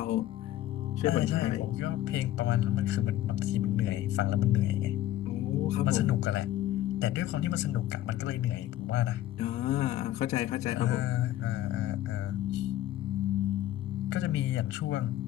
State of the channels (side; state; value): right; quieter; 13.5 dB